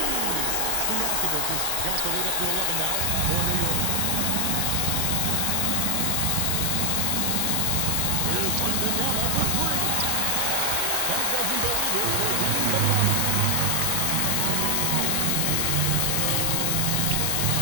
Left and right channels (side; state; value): both; different; correlation 0.00